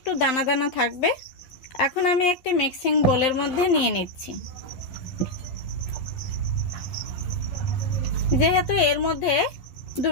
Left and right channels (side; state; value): right; late; 11 ms